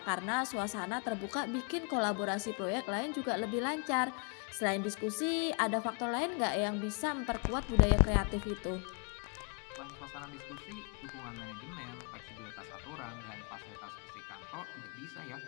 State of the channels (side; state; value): right; quieter; 36.4 dB